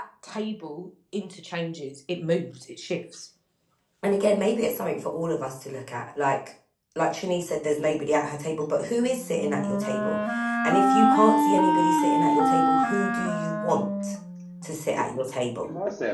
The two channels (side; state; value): both; identical; correlation 1.00